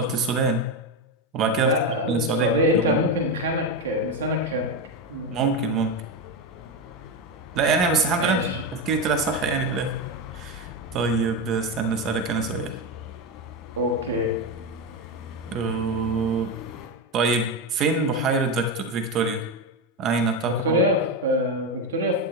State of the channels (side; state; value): both; normal; correlation 0.13